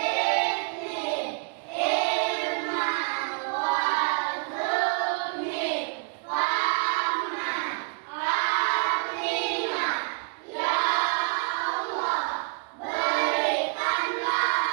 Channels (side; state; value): left; quieter; 36.7 dB